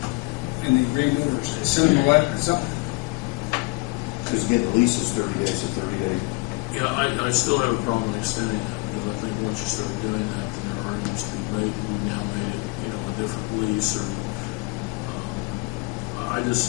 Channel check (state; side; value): quieter; right; 28.1 dB